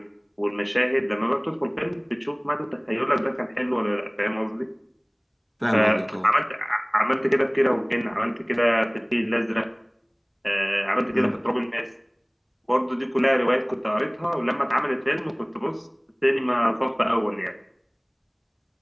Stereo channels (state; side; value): identical; both; correlation 1.00